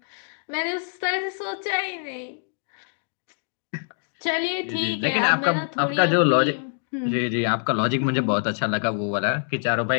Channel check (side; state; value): right; silent; digital silence